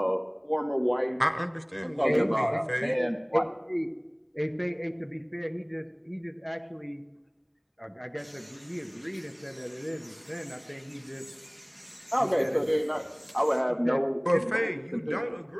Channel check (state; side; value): identical; both; correlation 1.00